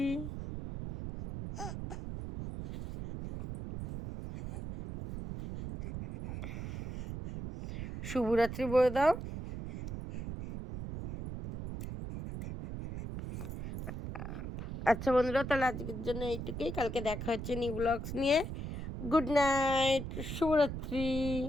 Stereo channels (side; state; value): right; noise; rumble, 7 dB below the sound